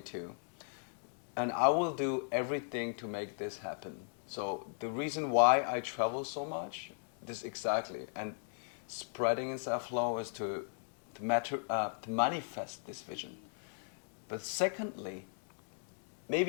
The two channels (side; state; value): right; silent; digital silence